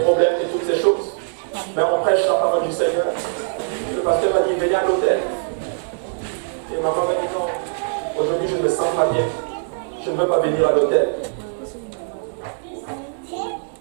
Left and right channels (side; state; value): left; silent; digital silence